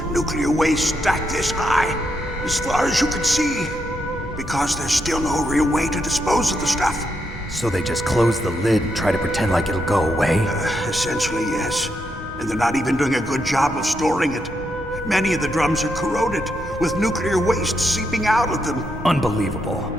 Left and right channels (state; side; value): normal; both; correlation 0.81